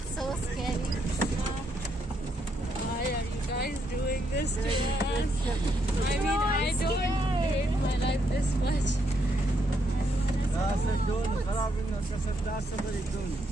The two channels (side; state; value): both; normal; correlation 0.76